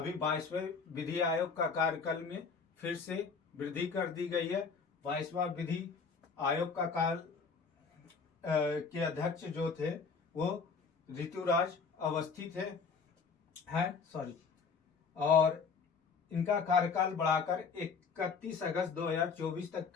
22वें विधि आयोग का कार्यकाल में फिर से वृद्धि कर दी गई है। 22वां विधि आयोग का काल के अध्यक्ष जो थे वो ऋतुराज अवस्थी और इनका कार्यकाल बढ़ाकर 31 अगस्त 2024 तक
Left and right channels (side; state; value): right; quieter; 5.3 dB